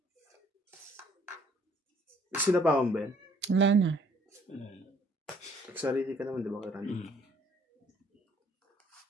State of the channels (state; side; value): normal; both; correlation 0.62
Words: Sino pa akong Ben? Wala na. Nagsarili ka naman, di ba, kay Randy?